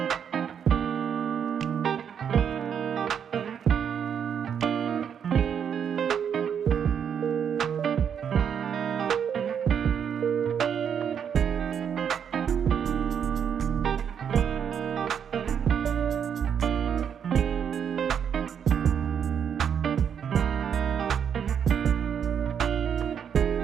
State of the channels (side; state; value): left; quieter; 7.9 dB